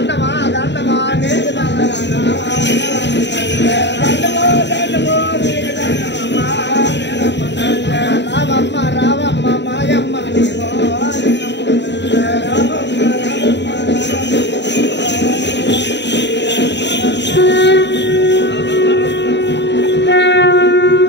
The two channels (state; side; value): late; right; 0.51 ms